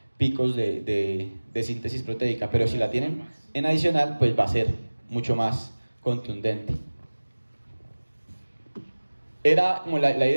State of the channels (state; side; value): inverted; both; correlation -1.00